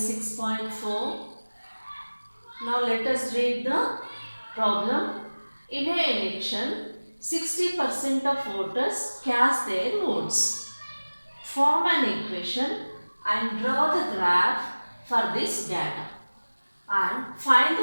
6.4. Now let us read the problem. In an election, 60% of voters cast their votes. Form an equation and draw the graph for this data and find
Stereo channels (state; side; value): inverted; both; correlation -1.00